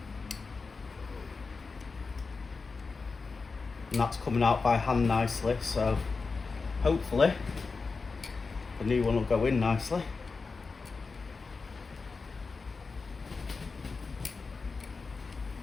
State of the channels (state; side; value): quieter; right; 4.4 dB